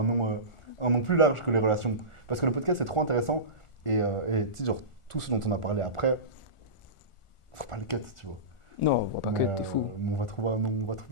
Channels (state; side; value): late; right; 1.4 ms